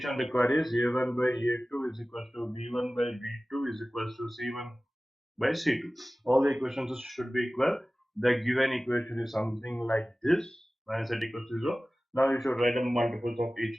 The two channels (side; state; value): both; normal; correlation 0.97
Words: required is a1 by a2 is equal to b1 by b2 is equal to c1 by c2. All the equations should be equal. The given equation is something like this, minus z equals to 0. Now you should write the multiples of